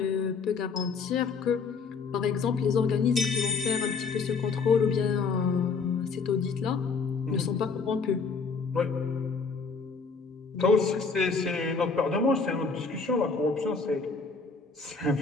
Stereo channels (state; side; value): quieter; right; 4.8 dB